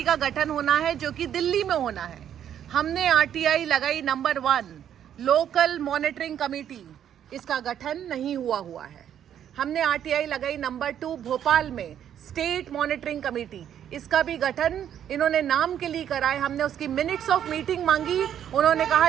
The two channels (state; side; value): quieter; left; 9.8 dB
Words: का गठन होना है जो कि दिल्ली में होना है। हमने आरटीआई लगाई नंबर 1 लोकल मॉनिटरिंग कमेटी, इसका गठन नहीं हुआ है। हमने आरटीआई लगाई नंबर 2 भोपाल में स्टेट मॉनिटरिंग कमेटी, इसका भी गठन इन्होंने नाम के लिए कराए। हमने उसकी मिनट्स ऑफ मीटिंग मांगी, उन्होंने